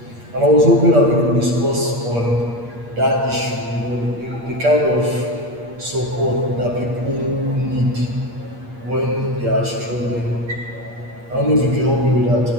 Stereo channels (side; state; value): left; late; 8.5 ms